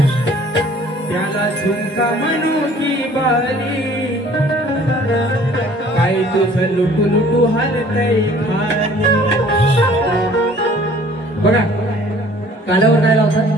झुमका म्हणू की बाली काय तुझं लुटू हालतय खाली. बघा कालावर काय लावतात?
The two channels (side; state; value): both; normal; correlation 0.53